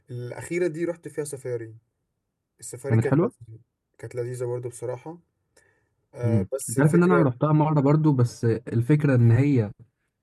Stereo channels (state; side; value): identical; both; correlation 1.00